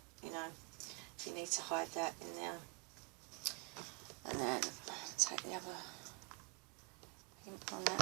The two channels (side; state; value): left; quieter; 31.3 dB